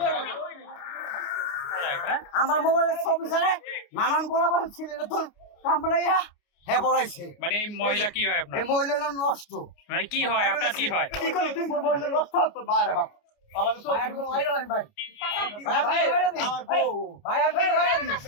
আমার মোবাইলের ছবি ছাড়া নানান পোলাপান ছিলেন তোর কামড়াইয়া হ্যাঁ পড়াইছে। মানে এই মহিলা কি হয় আপনার? এই মহিলা নষ্ট। মানে কি হয় আপনার? কি হয়? কি করলি তুই মহিলা নষ্ট তো বাইরে বাপ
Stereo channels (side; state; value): right; late; 29 ms